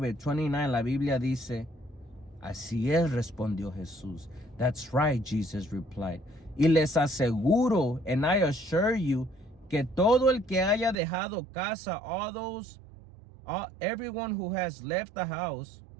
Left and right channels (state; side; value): drops out; left; at 11.0 s